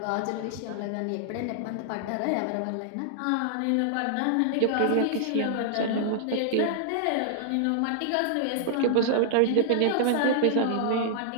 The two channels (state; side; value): different; both; correlation -0.01